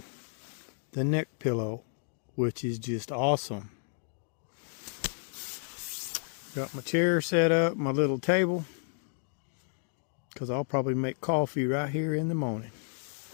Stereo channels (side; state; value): right; silent; 57 dB below the other